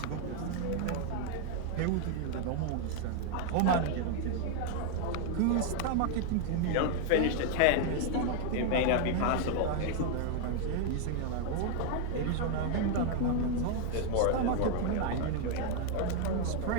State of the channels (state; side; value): different; both; correlation 0.00